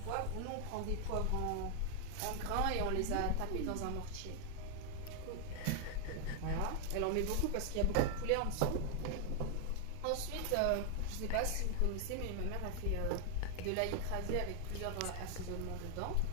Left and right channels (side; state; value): both; different; correlation 0.00